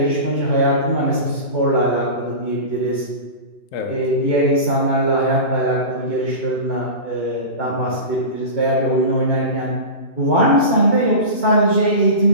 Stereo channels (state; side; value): late; right; 2.8 ms